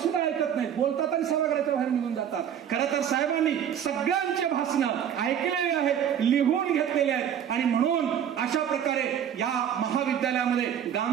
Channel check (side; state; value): left; quieter; 9.2 dB